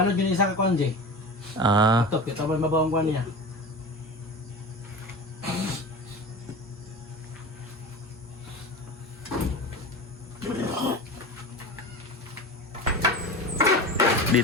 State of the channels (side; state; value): both; normal; correlation 0.30